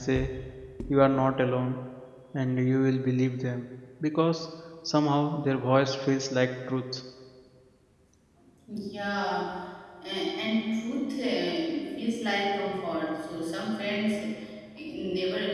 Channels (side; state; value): both; identical; correlation 1.00